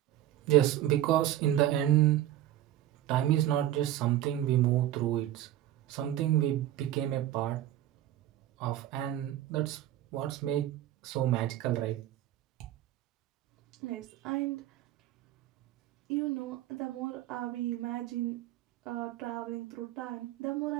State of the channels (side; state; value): left; quieter; 12.9 dB